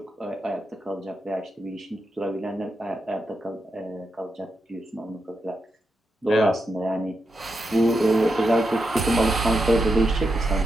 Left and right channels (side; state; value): both; normal; correlation 0.85